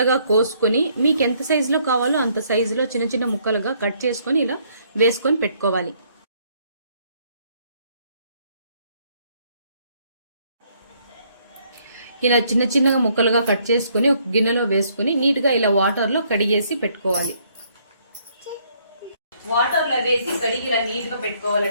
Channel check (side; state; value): both; inverted; correlation -0.67